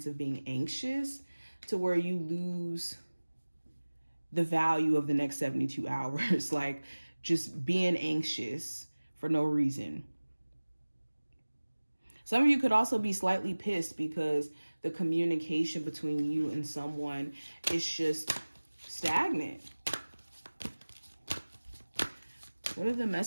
of being anxious to where you lose the value of the next 72 hours, like just being anxious for no reason. Some of you could also be slightly pissed because the communication between you and someone is just stagnant. What are the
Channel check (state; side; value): inverted; both; correlation -1.00